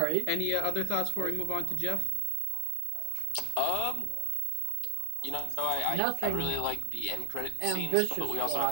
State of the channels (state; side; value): different; both; correlation 0.00